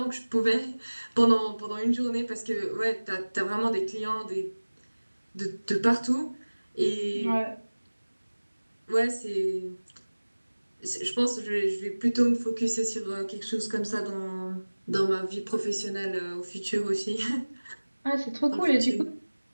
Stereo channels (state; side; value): inverted; both; correlation -1.00